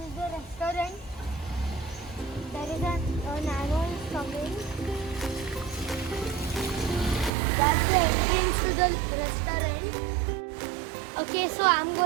is the restaurant. There is an animal coming. That's the entrance to the restaurant. Okay, so I'm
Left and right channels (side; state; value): left; drops out; at 7.3 s